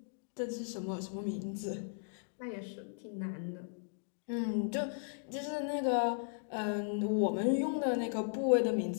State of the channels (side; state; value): right; silent; digital silence